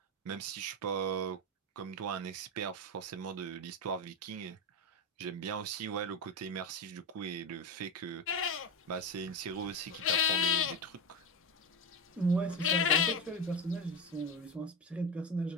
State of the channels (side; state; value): both; normal; correlation 0.17